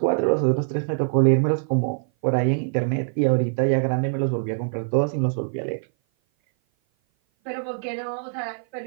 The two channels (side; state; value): left; silent; 57 dB below the other